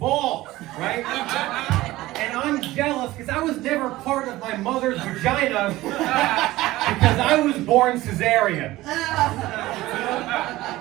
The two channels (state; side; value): quieter; left; 17.4 dB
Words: right? And I'm jealous because I was never part of my mother's vagina because I was born cesarean.